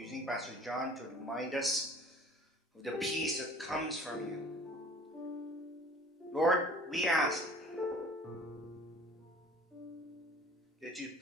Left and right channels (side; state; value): both; normal; correlation 0.48